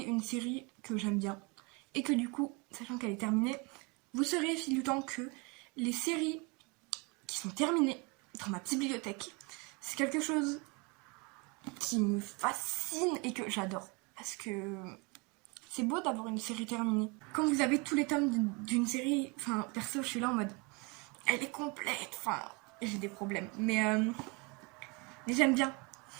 une série que j'aime bien. Et que du coup, sachant qu'elle est terminée, vous saurez au fil du temps que les séries qui sont terminées dans ma petite bibliothèque, c'est quelque chose qui me fascine et que j'adore. Parce que c'est beau d'avoir une série terminée. Quand vous avez tous les tomes d'une série, enfin, perso, je suis là en mode, elle est complète, enfin, j'ai des problèmes. Mais j'aime bien.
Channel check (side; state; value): left; quieter; 28.8 dB